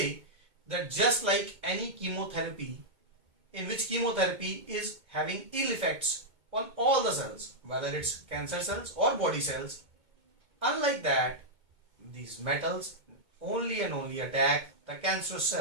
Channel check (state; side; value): late; left; 2.2 ms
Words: that just like any chemotherapy, in which chemotherapy is having ill effects on all the cells, whether it's cancer cells or body cells, unlike that, these metals only and only attack the cancerous